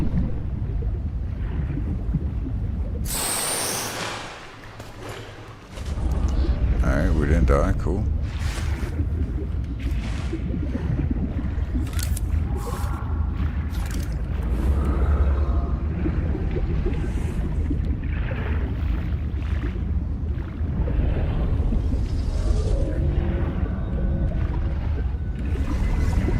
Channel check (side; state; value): both; identical; correlation 1.00